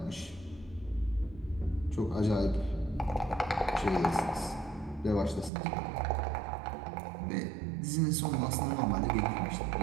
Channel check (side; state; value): left; drops out; at 5.5 s